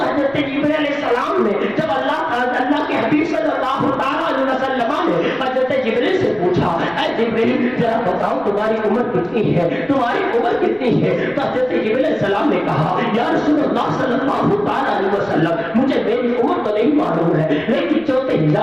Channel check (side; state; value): left; noise; rumble, 28 dB below the sound